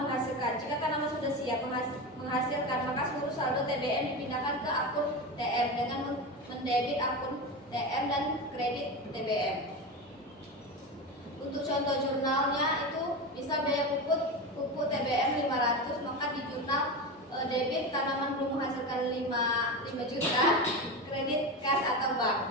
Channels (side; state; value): both; normal; correlation 0.21